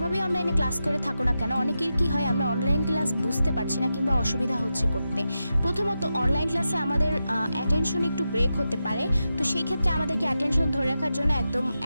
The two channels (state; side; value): inverted; both; correlation -0.89